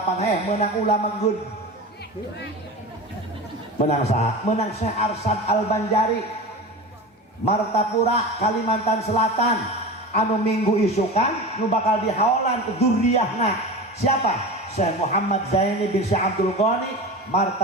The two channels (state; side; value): normal; both; correlation 0.30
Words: menang ulama good menang saha menang Syekh Arsad Al-Banjari Martapura Kalimantan Selatan anu minggu isukan nu bakal dihaolan ke dzurriahna siapa? Syekh Muhammad Zaini bin Syekh Abdul Ghani